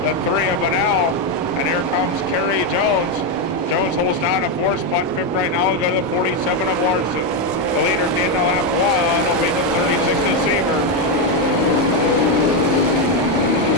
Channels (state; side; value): normal; both; correlation 0.06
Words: the 3 of Bunnell, and here comes Kerry Jones. Jones holds down a 4th spot, 5th right now. We'll go to the 47 of Larson. The leader at the end of lap 1 will be the 36 of Seaver.